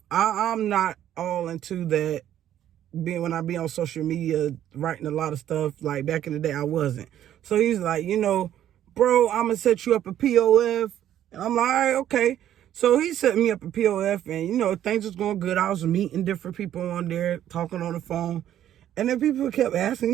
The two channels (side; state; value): left; quieter; 11.3 dB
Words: I'm not all into that. When I be on social media writing a lot of stuff, like back in the day, I wasn't. So he's like, bro, I'm gonna set you up a POF. And I'm like, all right, okay. So he set me up a POF, and things was going good. I was meeting different people on there, talking on the phone. And then people kept